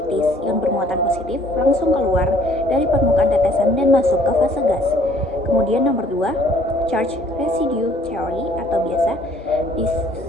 ion bermuatan positif langsung keluar dari permukaan tetesan dan masuk ke fase gas. Kemudian nomor 2, Charge Residue Theory atau biasa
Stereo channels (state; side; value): normal; both; correlation 0.59